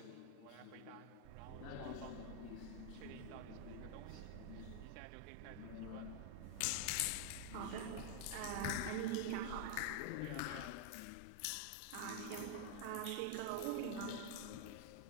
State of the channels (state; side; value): different; both; correlation 0.00